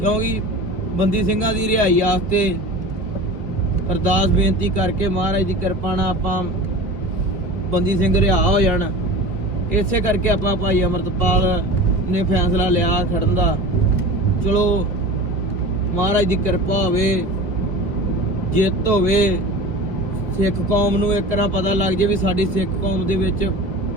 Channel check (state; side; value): late; left; 2.1 ms